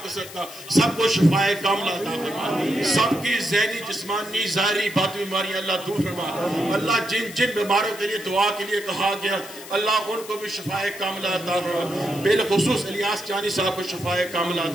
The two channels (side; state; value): left; noise; hiss, 15 dB below the sound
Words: کا صدقہ سب کو شفائے کاملہ عطا فرما، سب کی ذہنی جسمانی ظاہری باطنی بیماریاں اللہ دور فرما۔ اللہ جن بیماروں کے لیے دعا کے لیے کہا گیا اللہ ان کو بھی شفائے کاملہ عطا فرما، بالخصوص الیاس جانی صاحب کو شفائے کاملہ